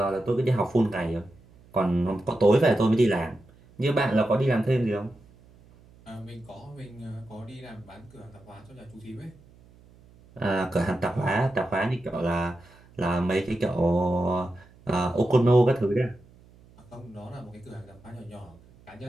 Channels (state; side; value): noise; right; hum, 26 dB below the sound